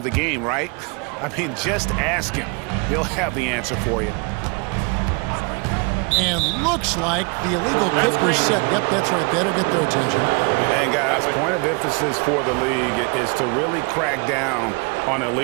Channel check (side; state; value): left; quieter; 31.7 dB